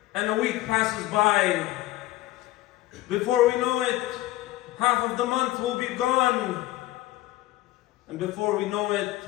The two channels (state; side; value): quieter; right; 16.8 dB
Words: and a week passes by. Before we know it, half of the month will be gone, and before we know it,